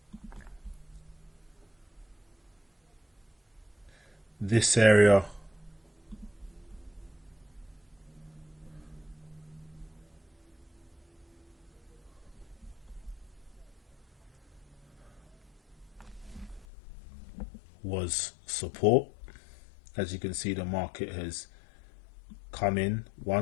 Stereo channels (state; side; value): drops out; right; at 16.7 s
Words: this area was support. As you can see, the market has come in